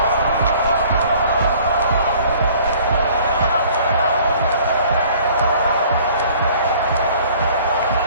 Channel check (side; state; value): both; inverted; correlation -0.54